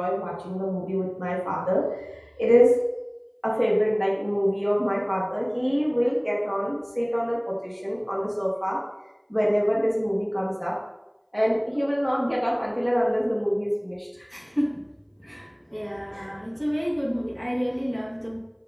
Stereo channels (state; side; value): identical; both; correlation 1.00